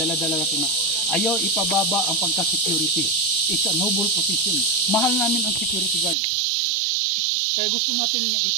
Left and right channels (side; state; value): left; drops out; at 6.2 s